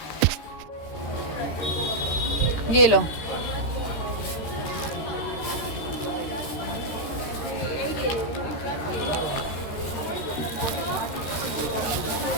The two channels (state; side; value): late; right; 13 ms